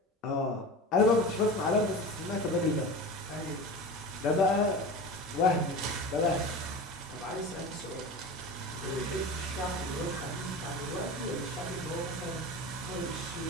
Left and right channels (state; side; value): normal; both; correlation 0.31